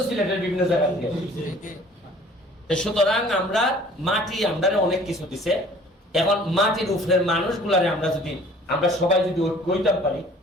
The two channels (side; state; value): both; normal; correlation 0.51